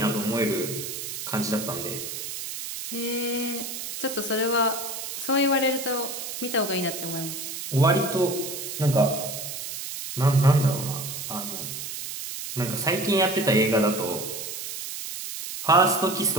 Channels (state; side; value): noise; right; hiss, 7 dB below the sound